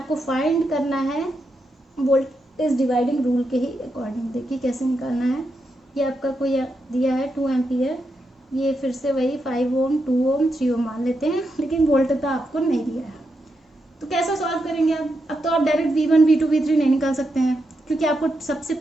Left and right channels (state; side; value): normal; both; correlation 0.84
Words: फाइंड करना है वोल्टेज डिवाइडिंग रूल के ही अकॉर्डिंग। देखिए कैसे निकालना है। ये आपका कोई दिया है 2 एम्पियर, ये फिर से वही 5 ओम 2 ओम 3 ओम मान लेते हैं, लेकिन वोल्टेजता आपको नहीं दिया है। तो कैसा सॉल्व करेंगे आप? अब तो आप डायरेक्ट V1 V2 V3 नहीं निकाल सकते हैं, क्योंकि आपको सबसे